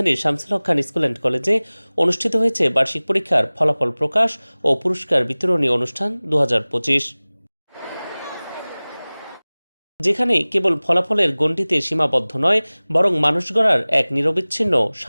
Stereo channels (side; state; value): both; inverted; correlation -1.00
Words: শামসুল হক খান স্কুল অ্যান্ড কলেজে অনুষ্ঠিত হয়েছে বার্ষিক পরীক্ষার ফলাফল প্রকাশ ও পুরস্কার বিতরণী অনুষ্ঠান 2025, যেখানে কেবল ফলাফলের গণ্ডিতে সীমাবদ্ধ নয়, বরং মানুষ গড়ার এক নিরবিচ্ছিন্ন